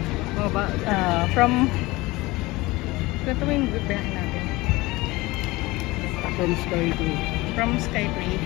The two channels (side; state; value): right; quieter; 21.1 dB